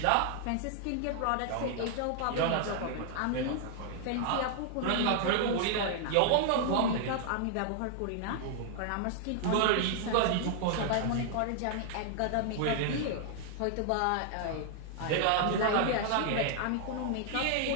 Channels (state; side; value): different; both; correlation -0.01